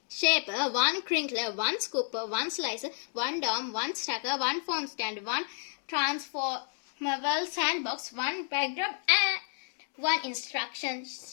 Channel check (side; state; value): right; silent; 57 dB below the other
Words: shaper, one crinkler, one scooper, one slicer, one dome, one stacker, one phone stand, one transformable sandbox, one backdrop and one instruction